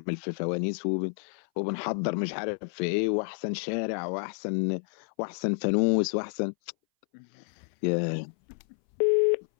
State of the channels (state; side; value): silent; right; 58 dB below the other